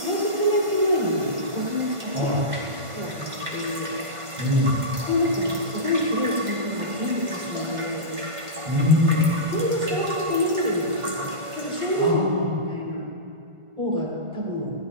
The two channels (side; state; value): left; late; 1.5 ms